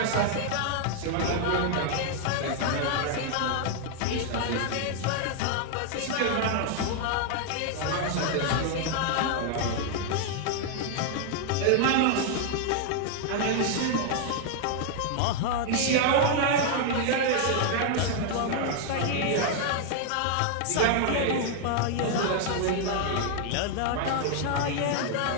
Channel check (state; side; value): different; both; correlation 0.00